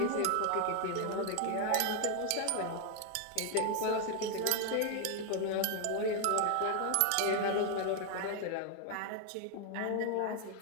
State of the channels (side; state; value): both; different; correlation 0.00